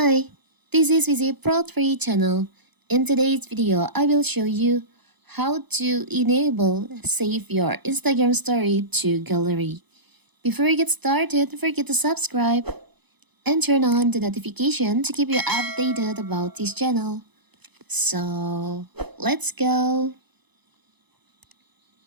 this is Vizi Pro 3 channel. In today's video, I will show you how to enable save your Instagram story to gallery. Before we get started, don't forget to subscribe and turn on the notification to keep you updated about this channel. So, let's go.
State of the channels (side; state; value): left; late; 0.99 ms